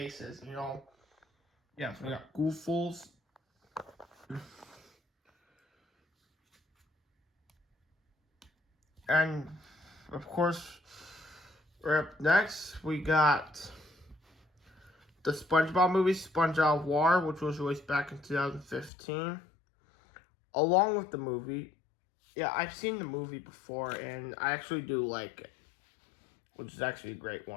you know. Yeah, so we got Gooffuls. And of course, right up next we got the SpongeBob movie, Sponge Out of Water, which was released back in 2015. Along with the movie. Yeah, I've seen the movie before, and I actually do like it, which is actually a great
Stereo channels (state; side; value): drops out; right; at 18.9 s